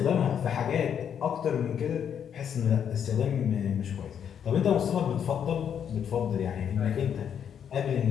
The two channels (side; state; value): right; quieter; 8.4 dB